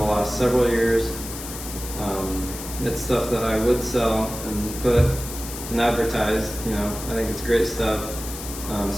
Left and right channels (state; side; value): noise; left; hiss, 10 dB below the sound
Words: last several years. It's stuff that I would sell and put and advertise, you know. I think it's great stuff.